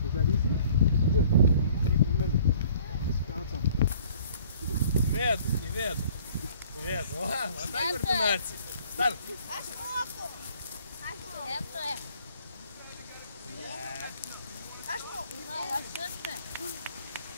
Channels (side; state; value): both; inverted; correlation -0.55